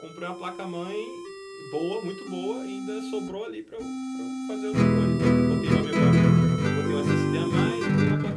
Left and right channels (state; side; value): identical; both; correlation 1.00